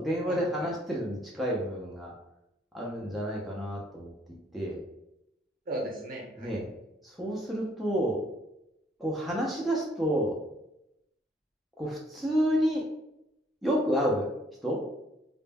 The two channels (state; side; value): normal; both; correlation 0.65